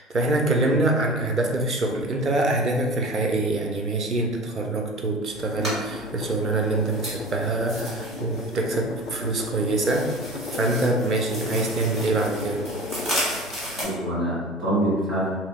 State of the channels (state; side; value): normal; both; correlation 0.37